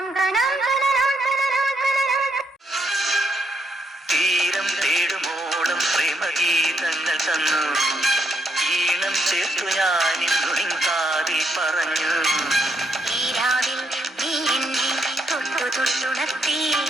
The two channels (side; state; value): both; normal; correlation 0.76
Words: തീരം തേടുമോളം പ്രേമഗീതങ്ങൾ തന്നു. ഈണം ചേർത്തു ഞാനിന്നു കാതിൽ പറഞ്ഞു. ഈ രാവിൽ നീ എന്നെ തൊട്ടു തൊട്ടുണർത്തി.